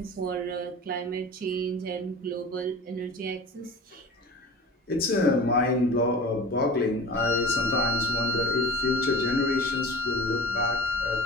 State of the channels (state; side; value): normal; both; correlation 0.38